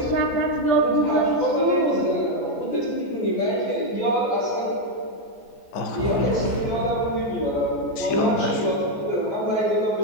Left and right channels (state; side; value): late; right; 14 ms